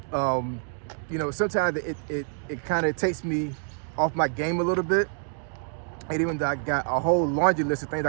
You know, sometimes it kind of takes me off my game a little bit. And even though I got a whole laundry list of things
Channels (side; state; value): left; silent; 60 dB below the other